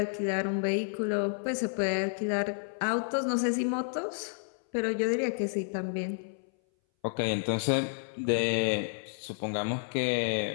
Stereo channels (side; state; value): right; silent; 57 dB below the other